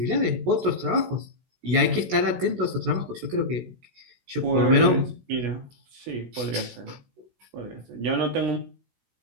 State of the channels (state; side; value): late; left; 16 ms